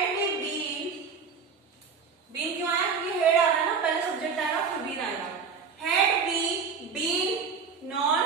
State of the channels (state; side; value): quieter; left; 5.6 dB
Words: बीन क्यों आया? क्योंकि हेड आ रहा है ना, पहले सब्जेक्ट आएगा फिर बीन आएगा। Had we been known,